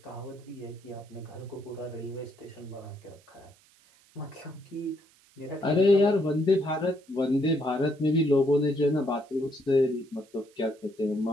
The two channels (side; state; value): right; noise; hiss, 30 dB below the sound